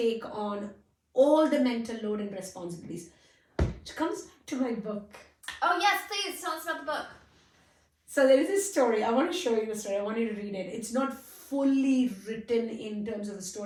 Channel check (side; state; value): both; identical; correlation 1.00